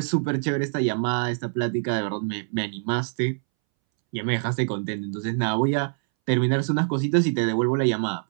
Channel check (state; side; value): silent; left; 62 dB below the other